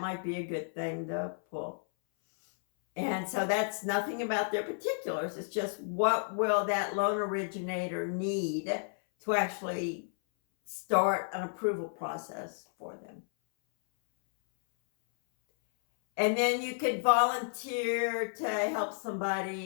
be a good thing to pull. And so that's nothing about their particulars. It's just what will that loan originator need to actually start an approval process for them. And then you could volunteer to help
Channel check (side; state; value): right; silent; 56 dB below the other